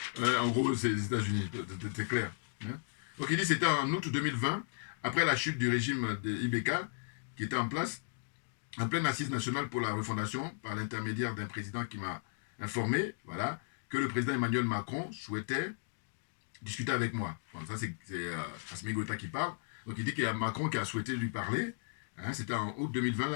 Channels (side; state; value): right; silent; digital silence